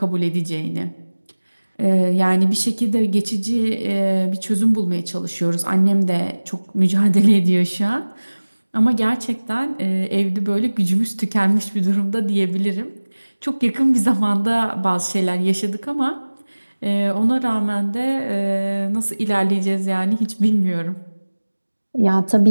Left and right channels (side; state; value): both; inverted; correlation -1.00